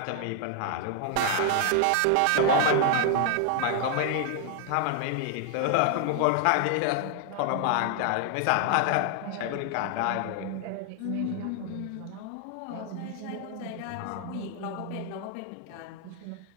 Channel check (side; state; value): both; different; correlation 0.00